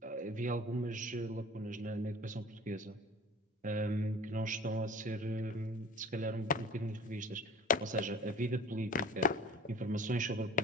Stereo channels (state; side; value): normal; both; correlation 0.42